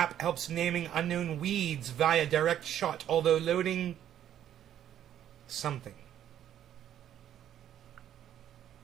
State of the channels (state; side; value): quieter; left; 10.7 dB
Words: helps naming unknown weeds via direct shot, although loading something.